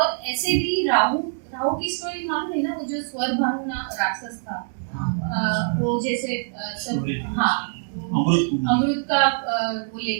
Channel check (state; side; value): silent; left; digital silence